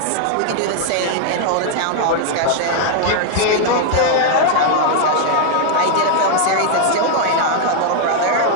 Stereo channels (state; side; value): different; both; correlation 0.00